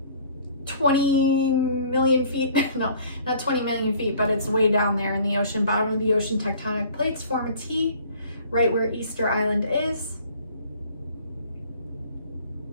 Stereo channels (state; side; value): inverted; both; correlation -0.52